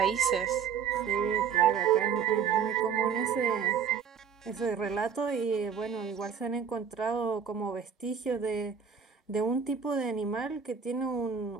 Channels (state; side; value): quieter; left; 6.9 dB